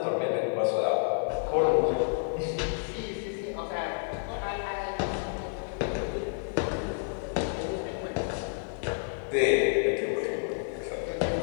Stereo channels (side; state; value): right; silent; digital silence